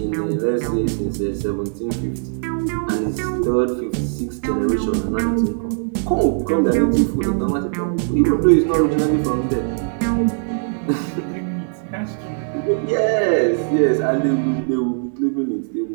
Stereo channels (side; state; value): left; silent; 66 dB below the other